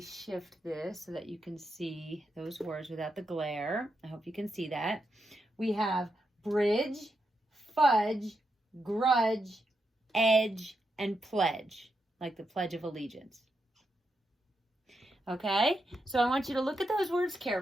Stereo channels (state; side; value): normal; both; correlation 0.84